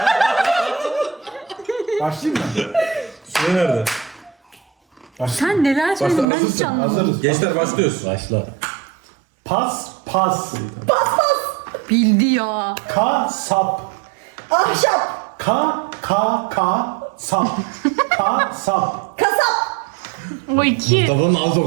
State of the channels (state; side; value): drops out; left; at 6.2 s